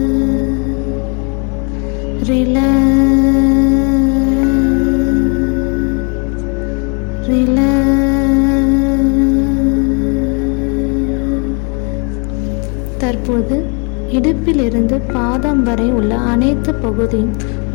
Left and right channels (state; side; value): quieter; right; 35.5 dB